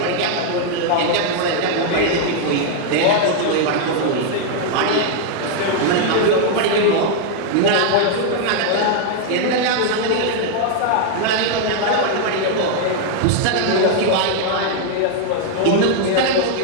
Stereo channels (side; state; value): both; different; correlation 0.00